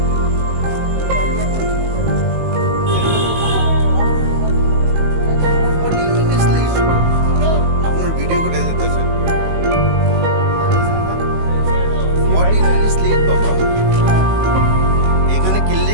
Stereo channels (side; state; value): left; late; 19 ms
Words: আপনার ভিডিও করে যেতেছেন 14 মিনিট লেট বাবা এখানে